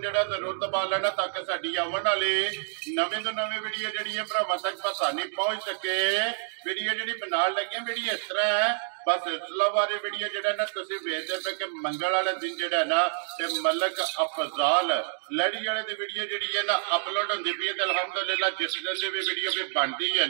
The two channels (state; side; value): silent; left; digital silence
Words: जिहड़ा जरूर दबा लेना ताकि साडी आउण वाली नवीं तो नवीं वीडियो जिहड़ी है भरावां तक आसानी पहुंच सके। वीडियो जिहड़ी बनाउण लगे वीडियो इस तरह है, बस सिलसिलावार वीडियो जिहड़ा ना तुसीं वेखदे पे कि मंगल वाले दिन जिहड़ा ना ते मलक अफजाल लड़ी वाले दी वीडियो जिहड़ी है ना अपलोड होंदी पई है। ते अल्हम्दुलिल्लाह जिस दिन दी भी वीडियो भी बनदी है